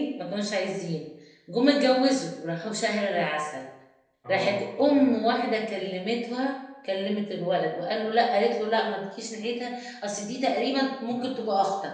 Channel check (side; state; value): both; identical; correlation 1.00